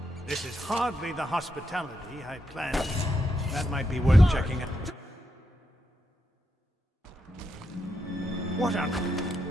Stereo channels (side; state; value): both; normal; correlation 0.83